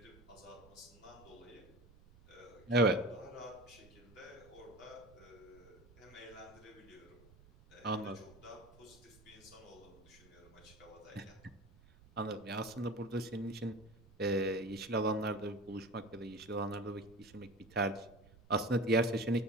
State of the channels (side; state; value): right; noise; rumble, 24 dB below the sound